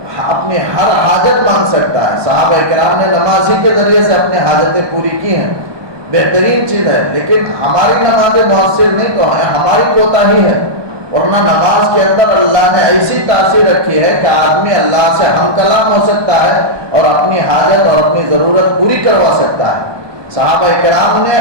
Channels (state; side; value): late; left; 1.2 ms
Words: اپنی ہر حاجت مانگ سکتا ہے. صحابہ کرام نے نماز ہی کے ذریعے سے اپنے حاجتیں پوری کی ہیں. بہترین چیز ہے. لیکن ہماری نمازیں مؤثر نہیں تو ہے, ہماری کوتاہی ہے. ورنہ نماز کے اندر اللہ نے ایسی تاثیر رکھی ہے کہ آدمی اللہ سے ہم کلام ہو سکتا ہے اور اپنی حاجت اور اپنی ضرورت پوری کروا سکتا ہے. صحابہ کرام نے